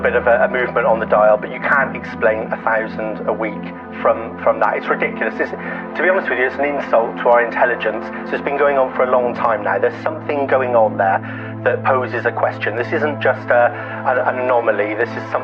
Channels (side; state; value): both; identical; correlation 1.00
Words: of a movement on the dial, but you can't explain 1,000 a week from that. It's ridiculous. To be honest with you, it's an insult to our intelligence. So it's been going on for a long time now. There's something going on there that poses a question. This isn't just an anomaly. This is